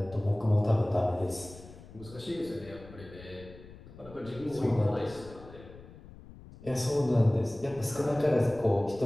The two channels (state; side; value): noise; left; rumble, 18 dB below the sound